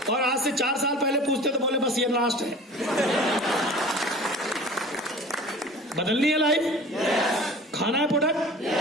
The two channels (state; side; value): normal; both; correlation 0.42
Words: और आज से 4 साल पहले पूछते तो बोले बस ये लास्ट है। बदलनी है लाइफ, खाना है प्रोडक्ट,